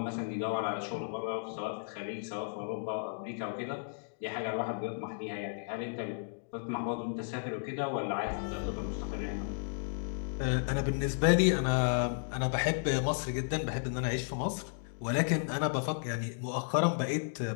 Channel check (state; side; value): silent; right; digital silence